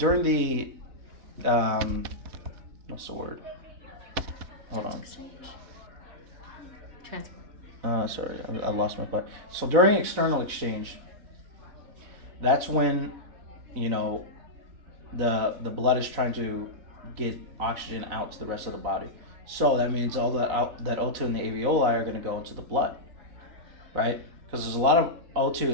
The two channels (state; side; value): late; left; 4.0 ms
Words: what's the word? Hold on. transfer. Sorry, I lost my thought. So during external exchange, that's when, the blood is trying to get oxygen out to the rest of the body. So that means all that O2 in the alveoli are going to go into the blood, right? Because there's a lot of O2.